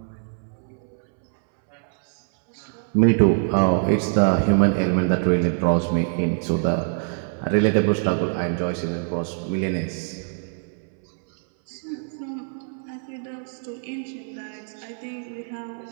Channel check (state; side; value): silent; left; 63 dB below the other